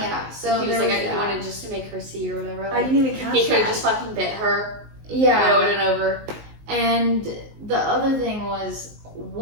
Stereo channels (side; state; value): left; late; 19 ms